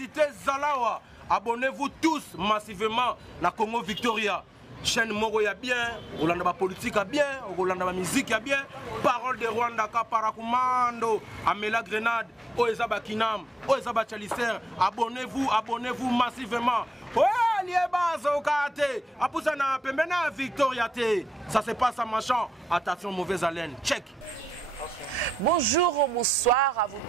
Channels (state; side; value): normal; both; correlation 0.86